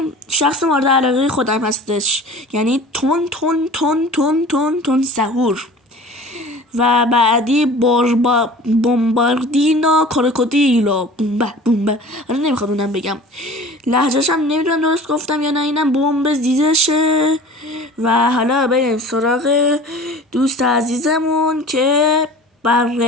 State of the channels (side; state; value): both; normal; correlation 0.42